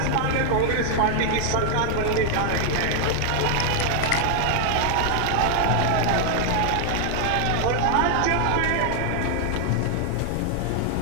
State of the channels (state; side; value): different; both; correlation 0.00